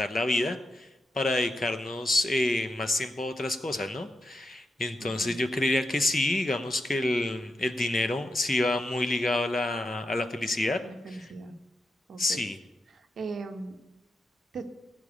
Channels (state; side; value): normal; both; correlation 0.86